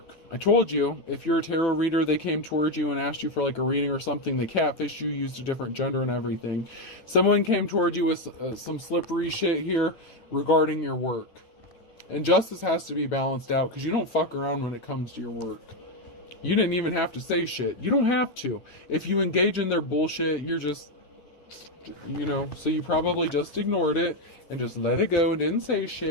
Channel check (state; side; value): late; right; 9.1 ms